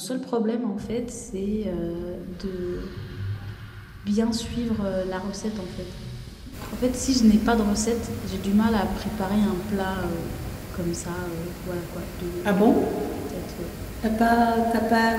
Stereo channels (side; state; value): both; identical; correlation 1.00